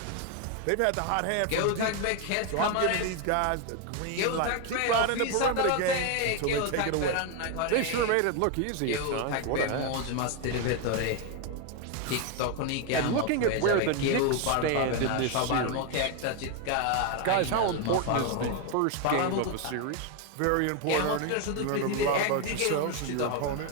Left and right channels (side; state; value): both; different; correlation 0.01